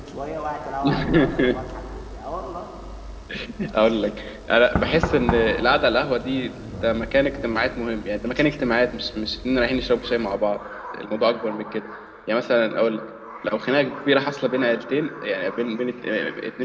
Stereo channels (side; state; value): both; identical; correlation 1.00